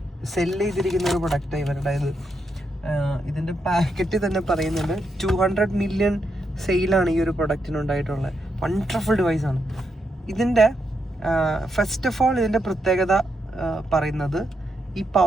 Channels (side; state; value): both; normal; correlation 0.82